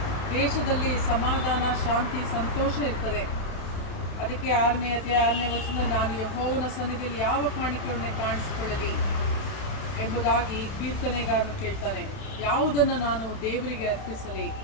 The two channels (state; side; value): late; right; 31 ms